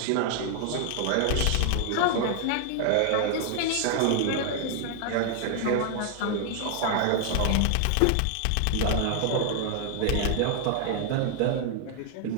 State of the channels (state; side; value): different; both; correlation 0.00